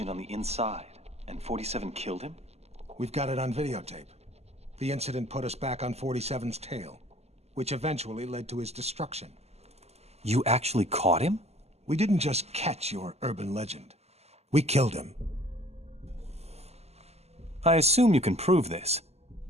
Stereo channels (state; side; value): late; left; 0.30 ms